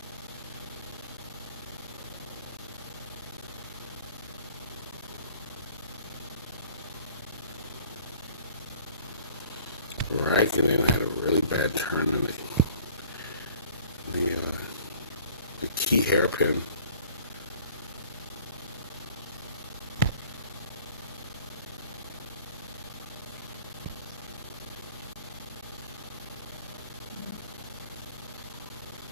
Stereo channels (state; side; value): inverted; both; correlation -0.51